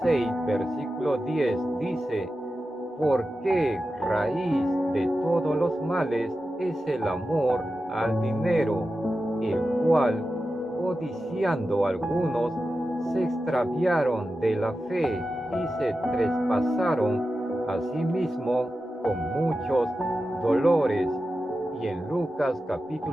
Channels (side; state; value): both; normal; correlation 0.92